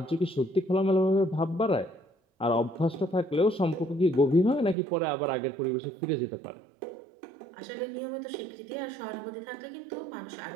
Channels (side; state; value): left; drops out; at 4.8 s